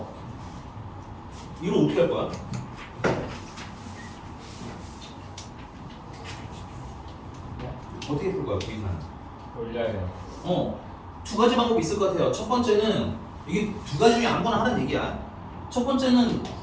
이거 어떻게 할 거야? 어떻게 풀 거야, 부의사는? 올려요. 두 가지 방법이 있을 것 같아요. 첫 번째는 이게 두 가지 중에 아무거나 하는 얘기야. 첫 번째는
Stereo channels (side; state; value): both; identical; correlation 1.00